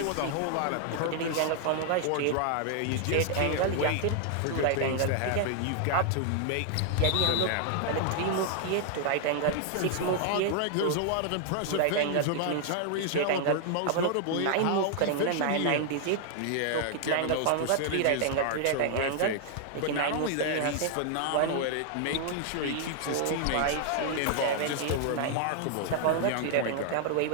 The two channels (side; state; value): both; different; correlation 0.00